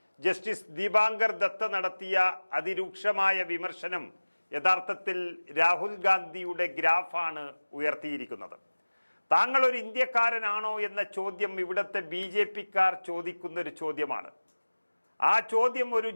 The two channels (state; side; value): inverted; both; correlation -1.00